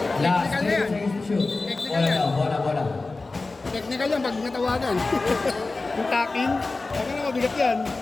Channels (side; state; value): right; quieter; 3.5 dB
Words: Last Technical na yan. 10 seconds to shoot. Technical yan. Bola. Technical yan pag natawagan. Yung tapping, baka na mabigat yan.